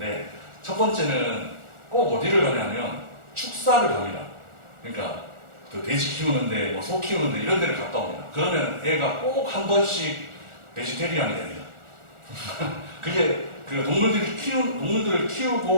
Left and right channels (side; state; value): left; late; 1.4 ms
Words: 첫 번째는 꼭 어디를 가냐면 축사를 갑니다. 그러니까 돼지 키우는데 소 키우는데 이런 데를 갔다 옵니다. 그러면 애가 꼭 한 번씩 베지테리안이 됩니다. 그게 동물들을